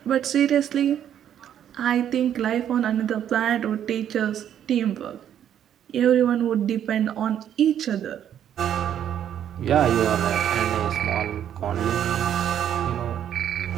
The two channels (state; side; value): quieter; left; 9.9 dB